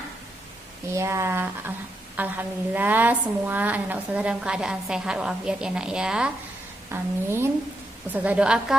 Ya, alhamdulillah semua anak-anak ustazah dalam keadaan sehat walafiat ya nak ya. Amin. Ustazah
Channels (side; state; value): both; normal; correlation 0.82